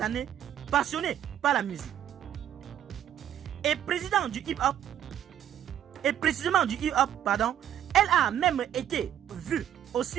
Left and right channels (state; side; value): quieter; left; 10.7 dB